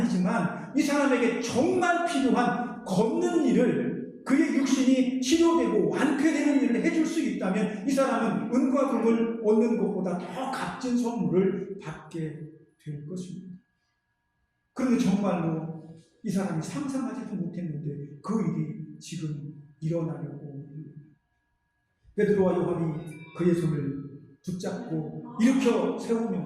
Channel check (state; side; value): identical; both; correlation 1.00